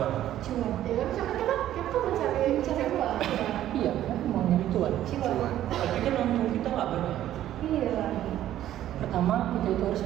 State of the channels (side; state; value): left; quieter; 12.5 dB